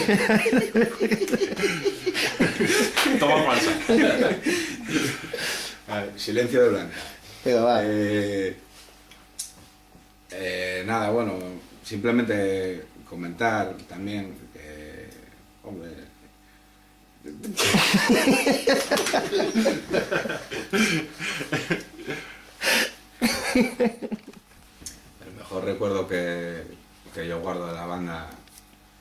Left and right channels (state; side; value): identical; both; correlation 1.00